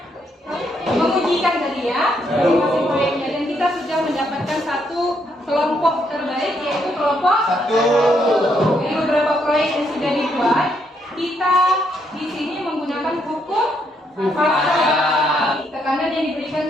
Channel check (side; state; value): both; normal; correlation 0.74